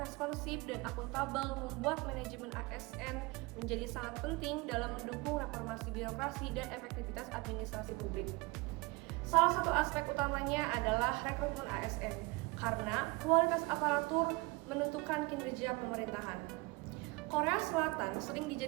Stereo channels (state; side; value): quieter; left; 25.3 dB